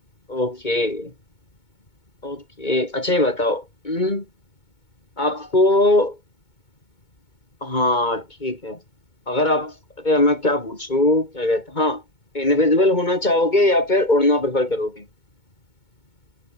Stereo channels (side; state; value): right; late; 2.2 ms